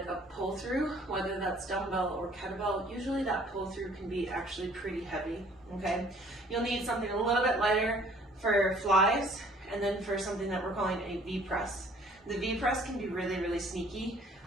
a pull through, whether that's dumbbell or kettlebell, usually that pull through can be actually pretty heavy, okay? You'll need something a little bit lighter for flies, and then for something that we're calling a V press. The V press can be really, really sneaky.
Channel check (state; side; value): normal; both; correlation 0.56